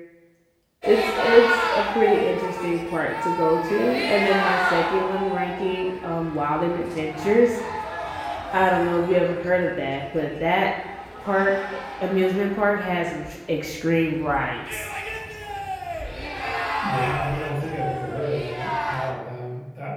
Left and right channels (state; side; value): identical; both; correlation 1.00